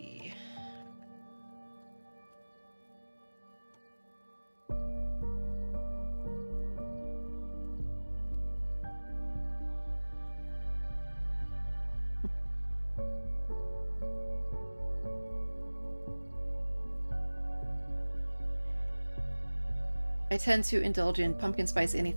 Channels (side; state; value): both; inverted; correlation -1.00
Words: I tend to indulge in pumpkin spice